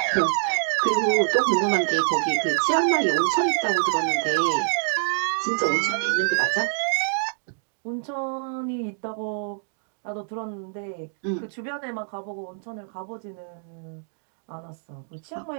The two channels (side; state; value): left; silent; digital silence